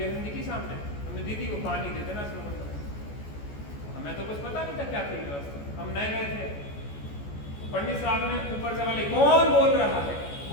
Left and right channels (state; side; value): late; right; 14 ms